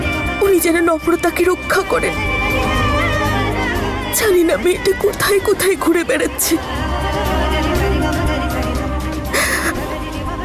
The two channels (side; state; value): both; identical; correlation 1.00